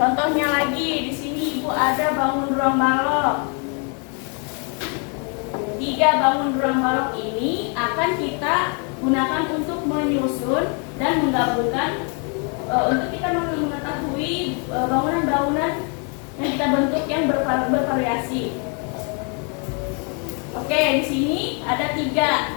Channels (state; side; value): quieter; right; 37.4 dB